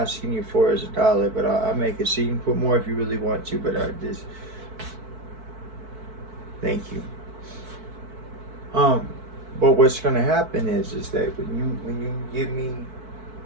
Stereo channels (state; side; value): late; left; 4.6 ms